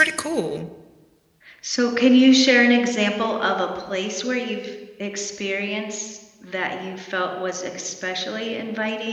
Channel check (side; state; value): both; identical; correlation 1.00